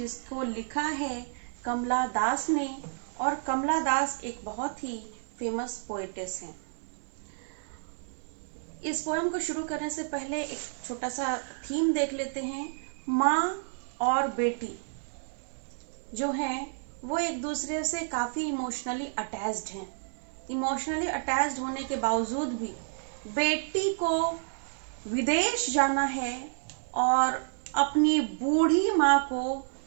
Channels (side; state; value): left; silent; digital silence